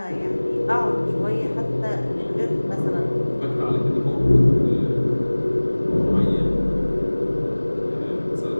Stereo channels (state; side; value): inverted; both; correlation -1.00